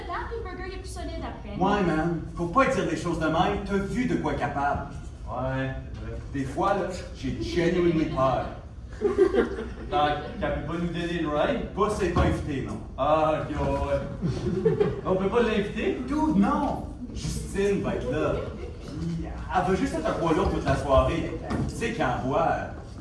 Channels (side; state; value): both; identical; correlation 1.00